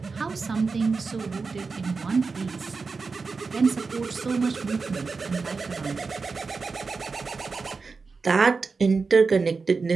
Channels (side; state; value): left; quieter; 4.5 dB